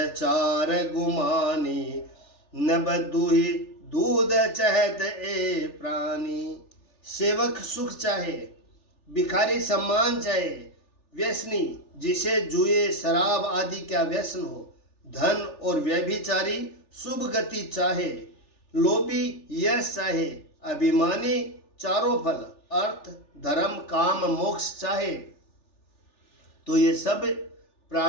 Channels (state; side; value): late; right; 3.4 ms